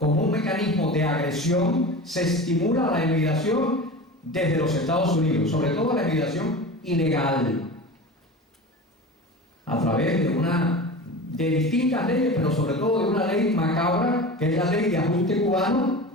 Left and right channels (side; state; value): both; normal; correlation 0.32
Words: un mecanismo de agresión, se estimula la emigración desde los Estados Unidos, sobre todo la emigración ilegal, a través de distintas leyes, pero sobre todo de una ley macabra, que es la ley de ajuste cubano,